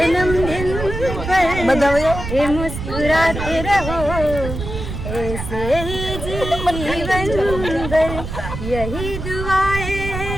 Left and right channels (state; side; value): noise; right; rumble, 7 dB below the sound